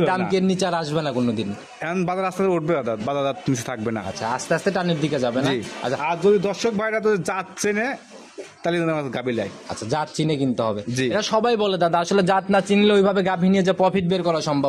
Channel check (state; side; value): identical; both; correlation 1.00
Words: দাম কি নিচে আর আসবে না কোনোদিন? এখন বাজার আস্তে আস্তে উঠবে দাদা, বাজার নিচে থাকবে না। আচ্ছা, আস্তে আস্তে টানের দিকে যাবে না? আচ্ছা, আর যদি দর্শক ভাইরা তো যাচ্ছে না তাহলে গাভী লাই। আচ্ছা, জাত চিনে কিনতে হবে। জি। এটা সবাই বলে দাদা, আসলে জাত না চিনলে ওইভাবে গাভী নিয়ে যে প্রফিট বের করা